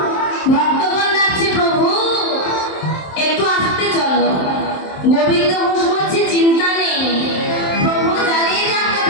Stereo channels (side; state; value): right; late; 27 ms